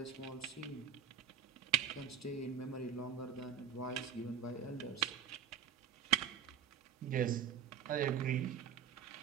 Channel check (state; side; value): quieter; left; 8.0 dB